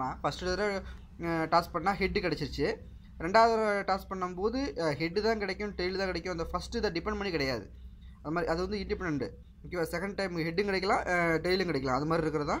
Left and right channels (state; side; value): identical; both; correlation 1.00